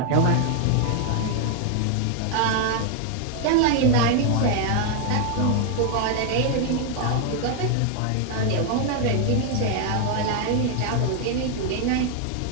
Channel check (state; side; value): different; both; correlation 0.00